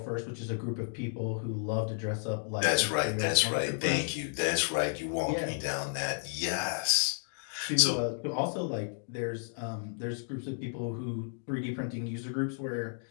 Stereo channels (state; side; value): silent; right; digital silence